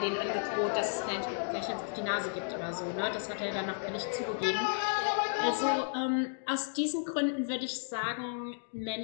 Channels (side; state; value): right; silent; digital silence